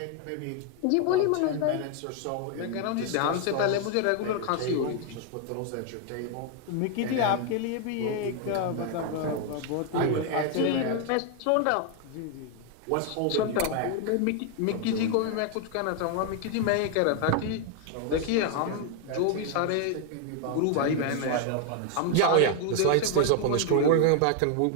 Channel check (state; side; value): different; both; correlation 0.00